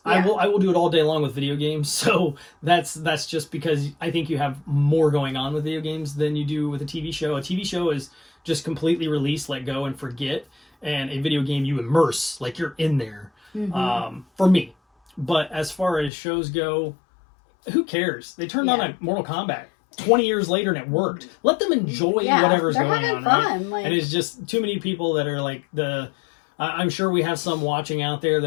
Yeah. I will do it all day long with video games. So that's just because I think you have more going on with video games than you do with a TV show. A TV show is just completely release, let go, and forget. And a video game, you immerse, like you're in there. For me. But as far as shows go, who cares? They turned on a Mortal Kombat 20 years later and it worked. Let them enjoy whatever's going on. Fun. Right? And it's just too many people that are like I'm sure we have some watching out there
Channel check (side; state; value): right; drops out; at 16.1 s